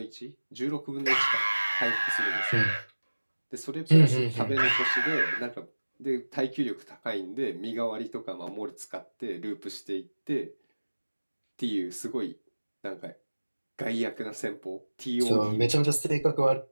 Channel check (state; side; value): inverted; both; correlation -1.00